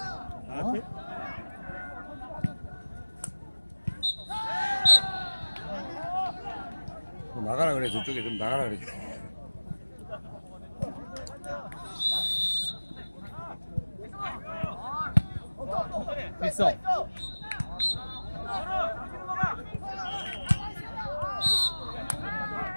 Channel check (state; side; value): inverted; both; correlation -1.00